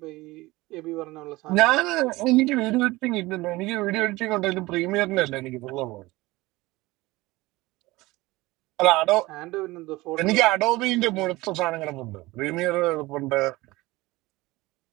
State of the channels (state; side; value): quieter; left; 20.3 dB